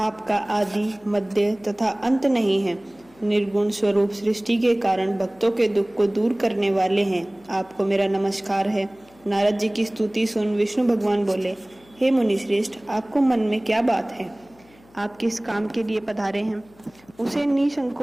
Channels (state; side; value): noise; left; hum, 28 dB below the sound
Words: आदि मध्य तथा अंत नहीं है। निर्गुण स्वरूप सृष्टि के कारण भक्तों के दुख को दूर करने वाले हैं। आपको मेरा नमस्कार है। नारद जी की स्तुति सुन विष्णु भगवान बोले, हे मुनि श्रेष्ठ, आपको मन में क्या बात है? आप किस काम के लिए पधारे हैं, उसे